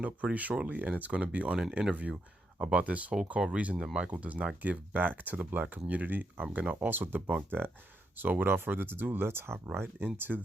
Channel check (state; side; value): normal; both; correlation 0.81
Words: up pretty shortly, and it's going to be on an interview about this whole called reason that Michael does not give back to the black community. I'm going to also debunk that. So without further ado, let's hop right into